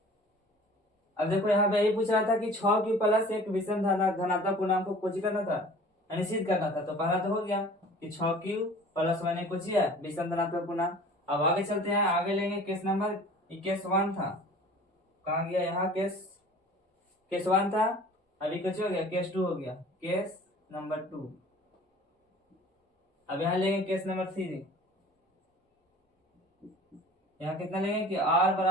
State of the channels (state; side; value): normal; both; correlation 0.46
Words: अब देखो यहाँ पे यही पूछ रहा था कि 6q प्लस एक विषम धनात्मक पूर्णांक को कुछ करना था, निश्चित करना था। तो पहला तो हो गया कि 6q प्लस 1 एक कुछ है विषम धनात्मक पूर्णांक। अब आगे चलते हैं, आगे लेंगे केस नंबर, केस 1 था, कहाँ गया, यहाँ केस 1 था, अभी कुछ हो गया, केस 2 हो गया, केस नंबर 2। अब यहाँ लेंगे केस नंबर 3। यहाँ कितना लेंगे कि r